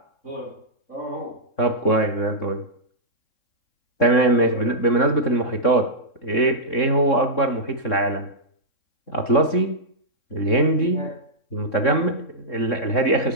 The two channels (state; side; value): late; right; 3.6 ms